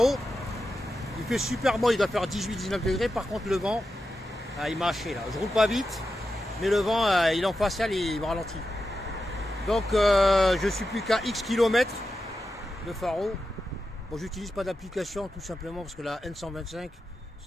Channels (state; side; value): normal; both; correlation 0.90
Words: Il fait super bon, il doit faire 18-19 degrés. Par contre, le vent, il m'a haché là. Je roule pas vite, mais le vent, il est en facial et il me ralentit. Donc, je suis plus qu'à X kilomètres de Faro. Bon, j'utilise pas d'application tout simplement parce que la N125,